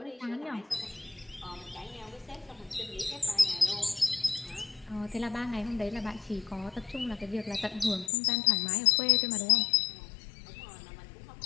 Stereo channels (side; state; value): right; drops out; at 8.1 s